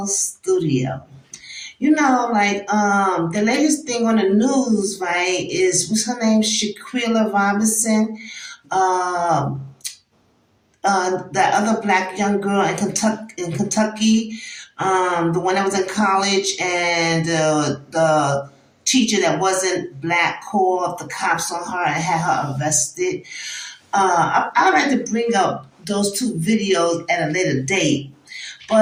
The latest thing on the news, right, is what's her name? Shaquilla Robinson. Um, that other black young girl in Kentucky, the one that was in college, and the teacher that wasn't black called the cops on her and had her arrested. I'd like to bring up those two videos at a later date.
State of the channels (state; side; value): identical; both; correlation 1.00